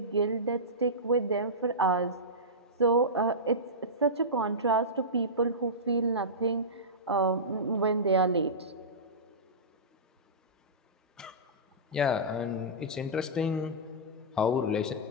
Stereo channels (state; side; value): normal; both; correlation -0.16